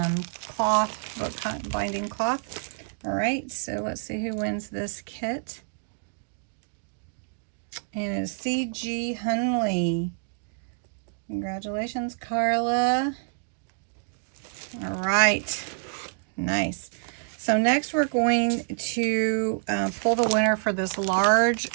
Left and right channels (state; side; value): silent; left; digital silence